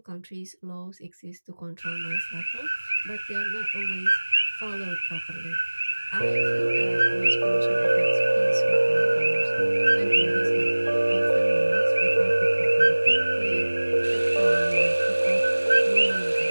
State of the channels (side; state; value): both; inverted; correlation -1.00